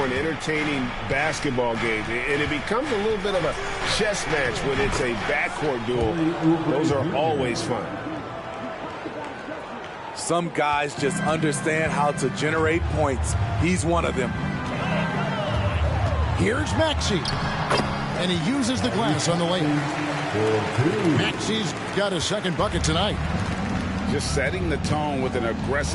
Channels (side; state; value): both; identical; correlation 1.00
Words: entertaining basketball game. And it becomes a little bit of a chess match when it's a backcourt duel. Those are always fun. Some guys just understand how to generate points. He's one of them. Here's Maxey. And he uses the glass on the lane. Maxey's got a second bucket tonight. Just setting the tone with an